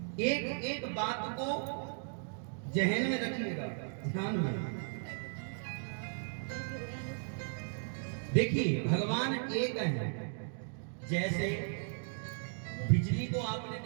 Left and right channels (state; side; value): silent; left; 54 dB below the other